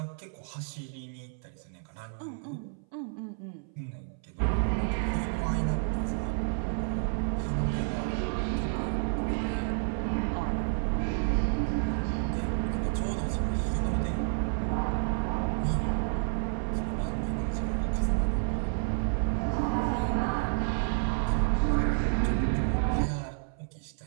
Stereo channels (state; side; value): silent; left; 58 dB below the other